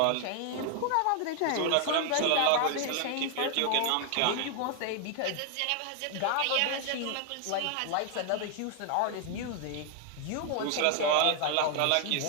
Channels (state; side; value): different; both; correlation 0.00